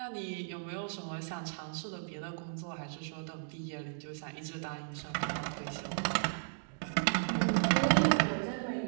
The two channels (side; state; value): left; silent; digital silence